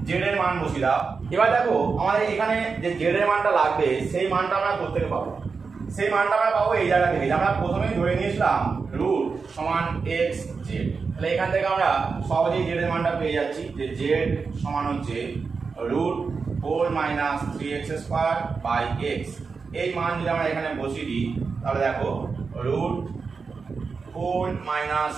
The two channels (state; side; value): quieter; left; 5.0 dB